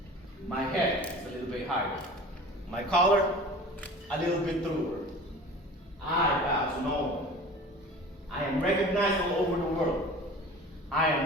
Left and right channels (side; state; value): both; normal; correlation 0.40